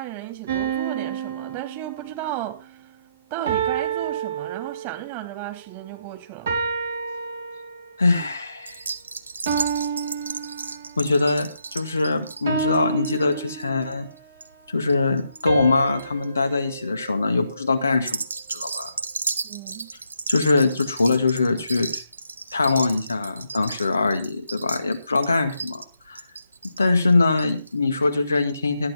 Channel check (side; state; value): both; inverted; correlation -0.78